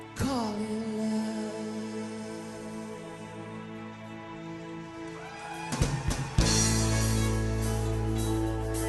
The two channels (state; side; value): identical; both; correlation 1.00